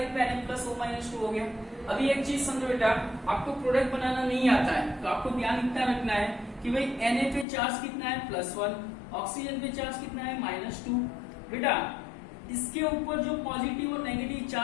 पे Na प्लस O-2 हो गया। अभी एक चीज समझो बेटा, आपको प्रोडक्ट बनाना नहीं आता है तो आपको ध्यान इतना रखना है कि भाई Na पे चार्ज कितना है +1, ऑक्सीजन पे चार्ज कितना है -2। बेटा इसके ऊपर जो पॉजिटिव और नेगेटिव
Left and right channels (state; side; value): drops out; right; at 7.5 s